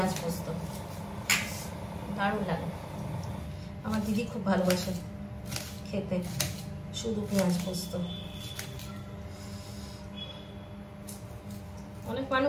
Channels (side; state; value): both; identical; correlation 1.00